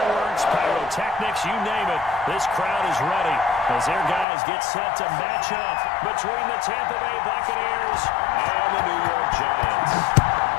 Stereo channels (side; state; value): right; drops out; at 4.2 s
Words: pyrotechnics, you name it. This crowd is ready as their guys get set to match up between the Tampa Bay Buccaneers and the New York Giants.